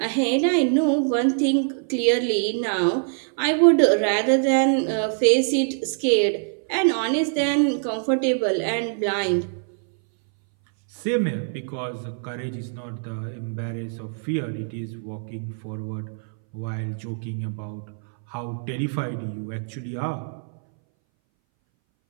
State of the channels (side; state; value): left; silent; 61 dB below the other